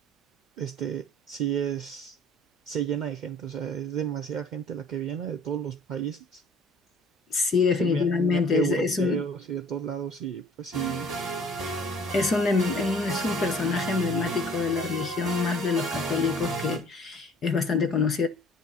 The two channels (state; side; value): normal; both; correlation 0.52